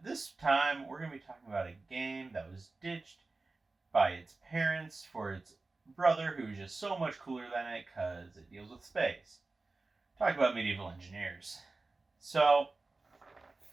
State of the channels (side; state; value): left; quieter; 3.5 dB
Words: this time we're going to be talking about a game that was ditched by its parents for its brother, who's just so much cooler than it because it deals with space. Talk about Medieval Engineers. So,